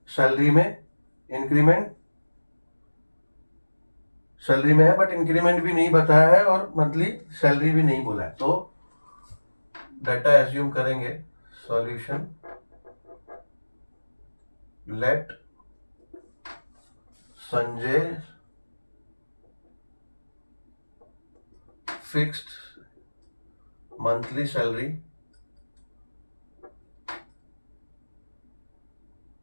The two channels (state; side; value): inverted; both; correlation -1.00